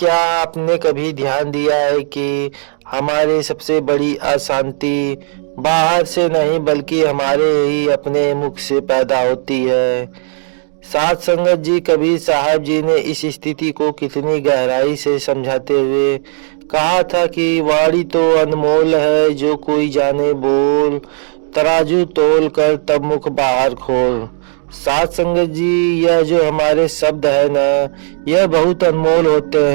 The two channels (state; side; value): silent; left; digital silence